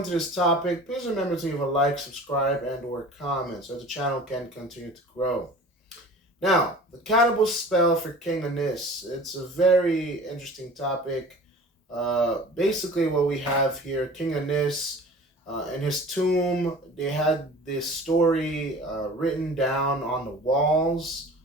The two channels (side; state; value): both; normal; correlation 0.42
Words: this topic, please remember to leave a like, subscribe, and or comment so the channel can continue to grow. Now, the cannibal spell for King Unis, it's a very interesting topic. Basically what we have here, King Unis in his tomb, they had this story written down on the walls.